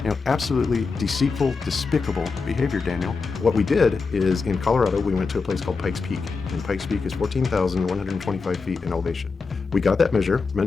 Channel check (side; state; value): right; quieter; 4.6 dB